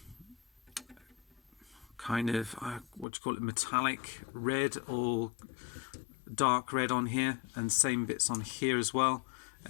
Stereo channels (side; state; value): right; drops out; at 3.1 s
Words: what do you call it, metallic red or dark red on here, and same bits on here as well.